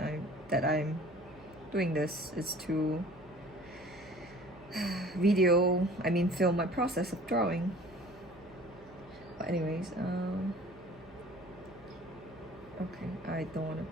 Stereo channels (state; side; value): noise; right; hum, 23 dB below the sound